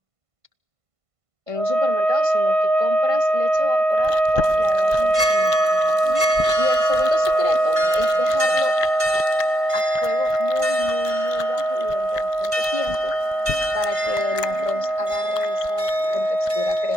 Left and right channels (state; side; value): late; left; 1.5 ms